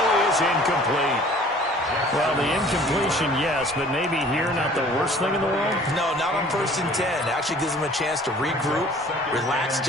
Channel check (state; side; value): normal; both; correlation 0.51